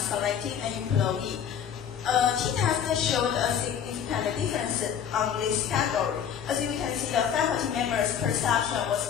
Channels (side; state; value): right; quieter; 8.4 dB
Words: an employee. T-test showed a significant difference on this category. As you can see, the faculty members' perception was